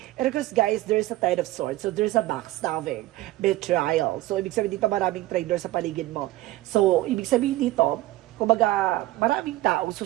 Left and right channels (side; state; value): left; quieter; 17.0 dB